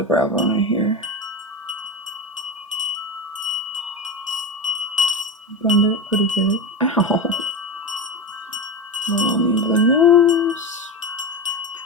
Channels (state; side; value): normal; both; correlation 0.21